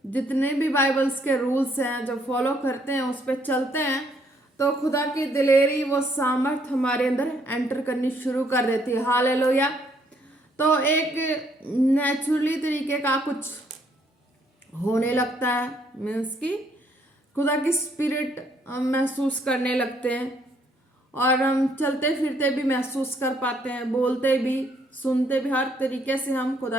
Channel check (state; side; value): normal; both; correlation 0.68